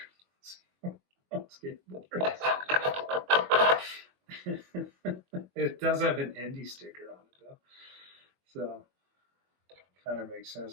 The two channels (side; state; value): left; late; 22 ms